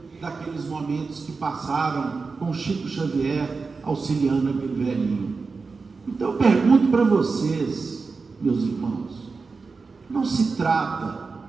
daqueles momentos que passaram com Chico Xavier auxiliando aquele velhinho. Então eu pergunto para vocês, meus irmãos, não se trata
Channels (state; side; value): quieter; left; 4.4 dB